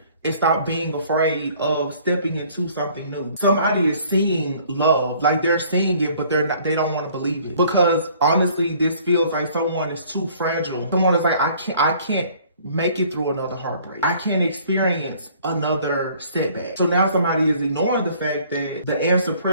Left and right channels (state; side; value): inverted; both; correlation -0.56